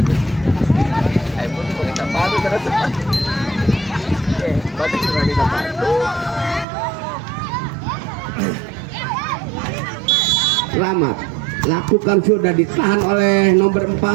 Selamat lakukan sudah, ditahan oleh nomor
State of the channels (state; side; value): drops out; left; at 6.7 s